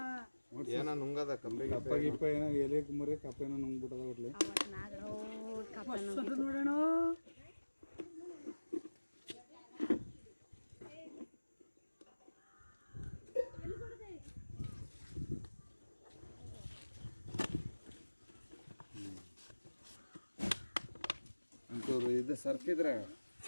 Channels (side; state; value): both; inverted; correlation -1.00